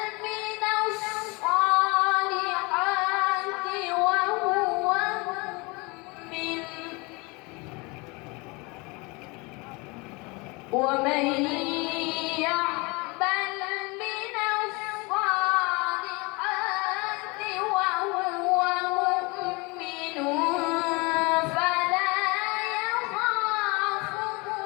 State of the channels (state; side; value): quieter; right; 27.1 dB